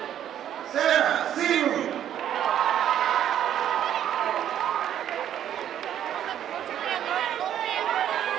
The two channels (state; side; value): quieter; left; 10.5 dB